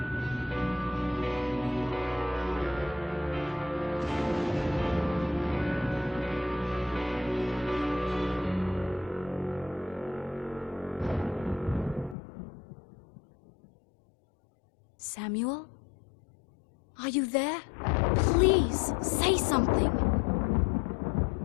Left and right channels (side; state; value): right; drops out; at 12.2 s